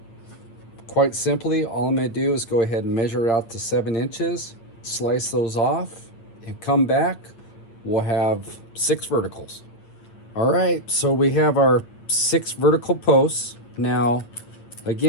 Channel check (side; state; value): right; late; 8.7 ms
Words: quite simply, all I'm going to do is go ahead and measure it out to 7 inches, slice those off, and come back. We'll have 6 verticals. All right, so we have our 6 vertical posts. Now,